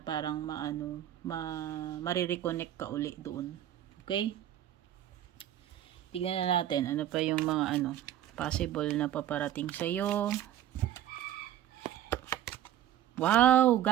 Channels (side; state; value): left; quieter; 12.0 dB